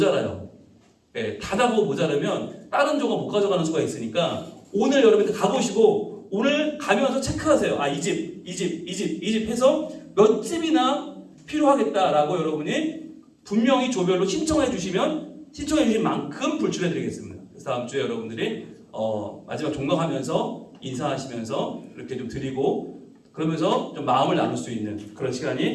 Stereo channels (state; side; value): identical; both; correlation 1.00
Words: 예, 다 보고 모자라면 다른 조가 못 가져가는 수가 있으니까 오늘 여러분들 가보시고 오늘 가면서 체크하세요. 이 집 해서 몇 집이나 필요하겠다라고 여러분이 분명히 조별로 신청해 주신 만큼 불출해 드리겠습니다. 그래서 다음 주에 여러분들이 마지막 종강하면서 인사하시면서 이렇게 좀 드리고 그러면서 좀 마음을 나눌 수 있는 그런